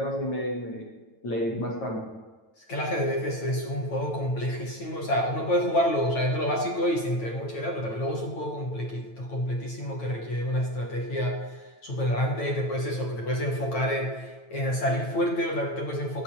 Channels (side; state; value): right; late; 9.1 ms